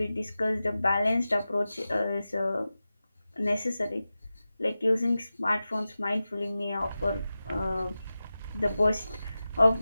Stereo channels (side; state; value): both; inverted; correlation -0.94